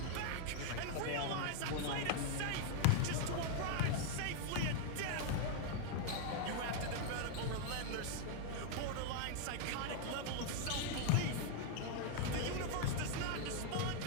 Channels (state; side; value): different; both; correlation 0.00